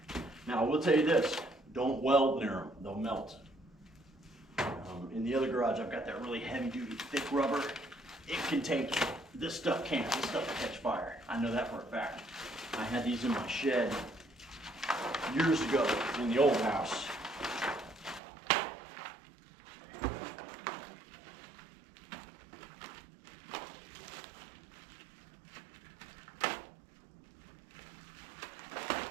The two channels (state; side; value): drops out; left; at 18.2 s